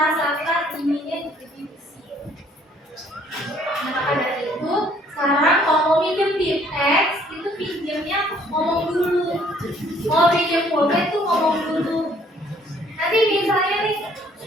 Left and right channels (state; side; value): normal; both; correlation 0.61